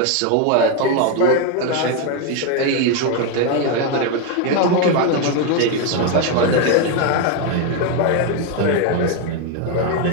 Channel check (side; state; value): both; different; correlation 0.01